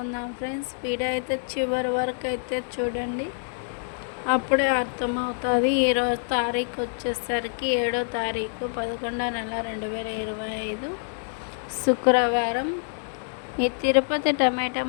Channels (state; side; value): silent; right; digital silence